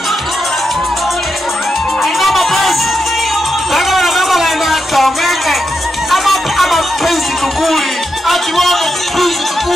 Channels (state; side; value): normal; both; correlation 0.85